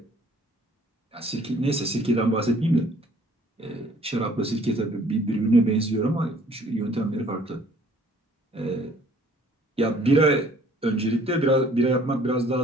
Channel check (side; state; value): both; normal; correlation 0.57